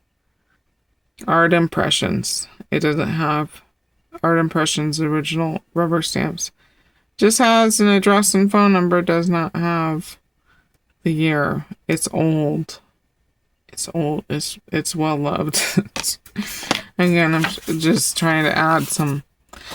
Art Impressions. It doesn't have Art Impressions original rubber stamps. Just has an address and phone number. Does not have the year. It's old. It's old. It's well loved. Again, I'm just trying to add some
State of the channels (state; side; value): identical; both; correlation 1.00